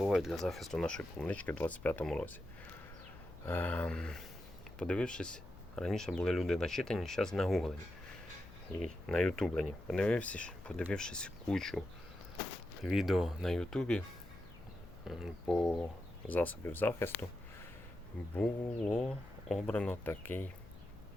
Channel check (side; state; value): left; noise; hum, 19 dB below the sound